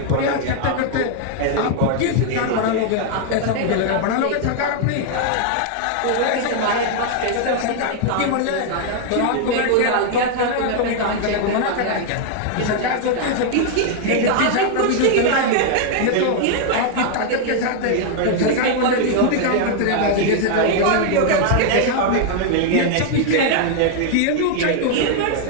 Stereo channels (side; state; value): both; different; correlation 0.00